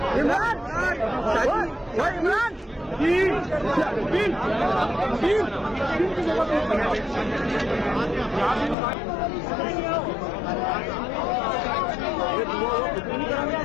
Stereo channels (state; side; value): drops out; right; at 8.8 s